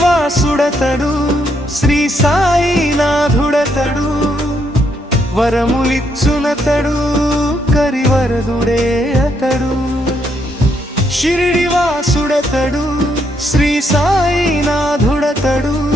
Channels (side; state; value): both; normal; correlation 0.75